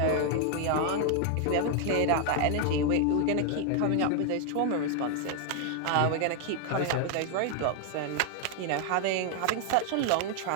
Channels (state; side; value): different; both; correlation 0.00